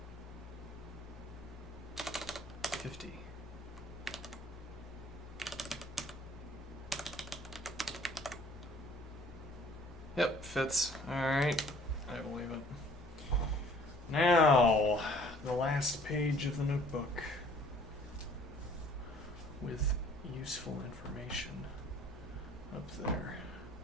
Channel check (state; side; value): normal; both; correlation 0.55